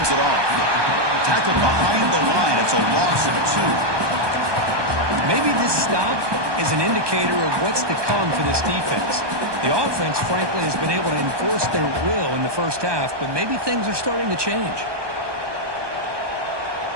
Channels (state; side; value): late; left; 1.2 ms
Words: it off. Tackled behind the line. It's a loss of 2. Maybe this stop is an indicator of what's to come for this defense. The offense, frankly, has been able to enforce their will in the first half, but maybe things are starting to change.